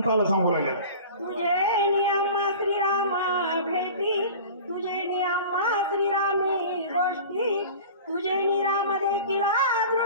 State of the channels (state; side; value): inverted; both; correlation -0.39